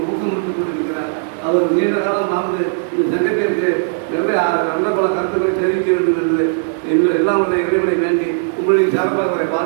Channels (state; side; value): silent; left; digital silence